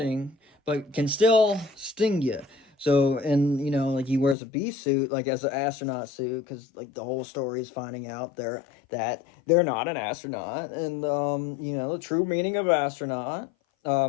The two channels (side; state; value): right; drops out; at 4.4 s